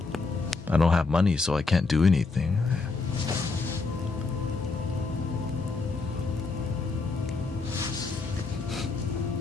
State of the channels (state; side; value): quieter; right; 4.0 dB